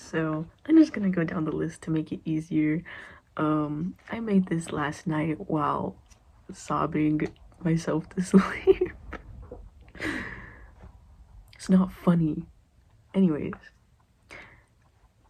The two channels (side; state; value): both; identical; correlation 1.00